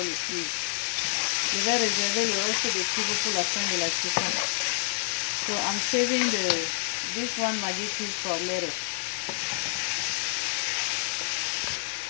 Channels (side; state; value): right; silent; digital silence